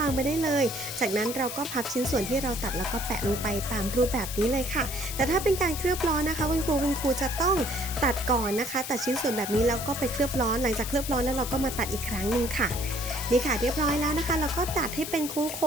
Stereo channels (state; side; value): noise; left; hiss, 7 dB below the sound